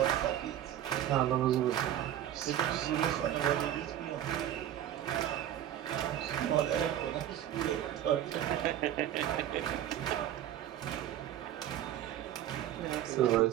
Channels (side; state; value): left; quieter; 11.5 dB